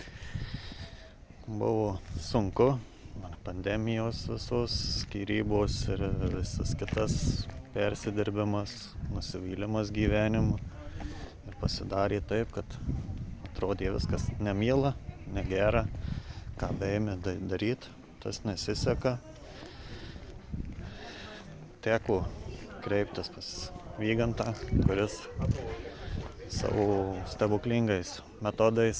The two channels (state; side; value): identical; both; correlation 1.00